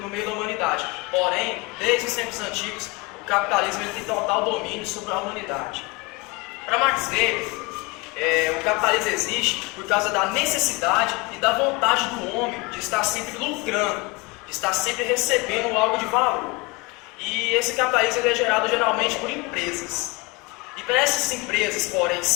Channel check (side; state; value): right; quieter; 26.1 dB